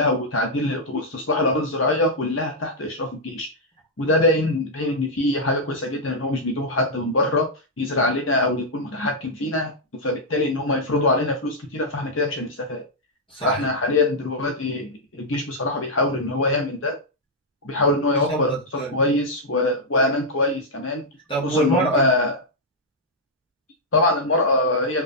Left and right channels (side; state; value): both; normal; correlation -0.06